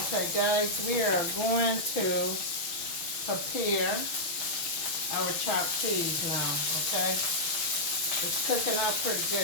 guys, we are going to prepare our chopped cheese now, okay? It's cooking up pretty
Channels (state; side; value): late; right; 6.2 ms